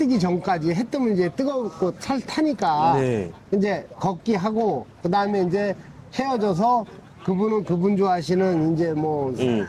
전까지, 해 뜨면 이제 뜨겁고 타니까 네. 이제 걷기 하고, 그 다음에 이제 헤어져서 그분은 그분 좋아하시는 이제 뭐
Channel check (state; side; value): identical; both; correlation 1.00